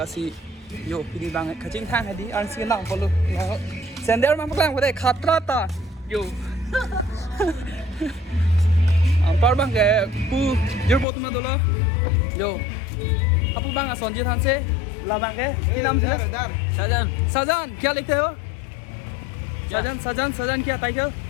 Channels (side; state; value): right; drops out; at 11.1 s